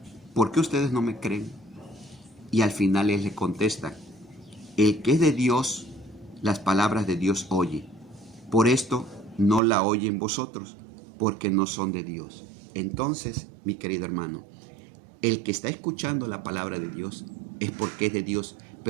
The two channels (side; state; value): left; drops out; at 9.6 s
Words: ¿por qué ustedes no me creen? Y al final él le contesta, el que es de Dios, las palabras de Dios oye. Por esto no la oyen vosotros, porque no son de Dios. Entonces, mi querido hermano, el que está escuchando la palabra de Dios es porque es de Dios,